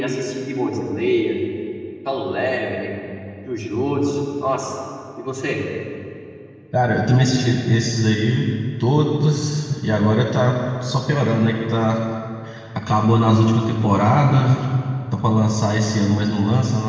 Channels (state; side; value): identical; both; correlation 1.00